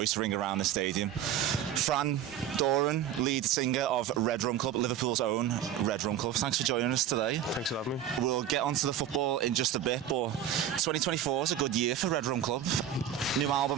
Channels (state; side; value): quieter; left; 9.9 dB